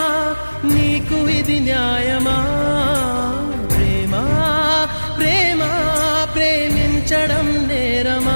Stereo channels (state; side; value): inverted; both; correlation -1.00